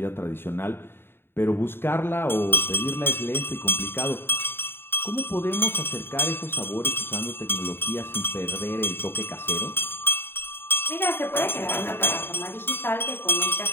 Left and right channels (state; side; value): late; right; 0.11 ms